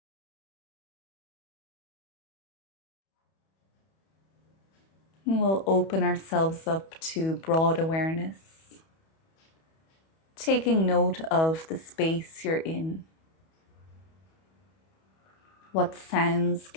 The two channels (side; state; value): right; late; 31 ms